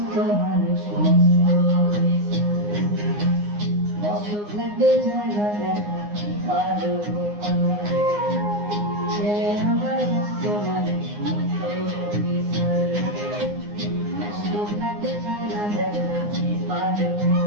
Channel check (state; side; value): late; left; 9.7 ms